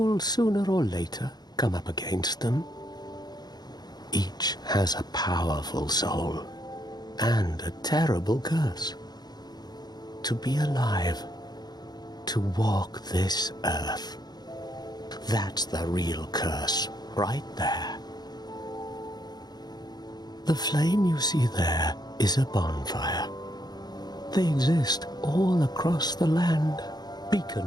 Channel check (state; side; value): late; right; 0.20 ms